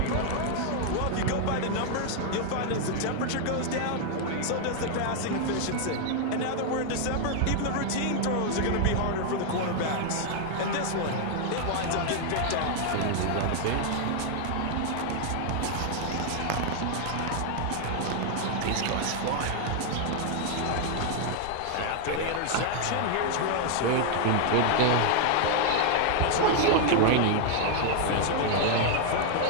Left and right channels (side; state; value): both; different; correlation 0.00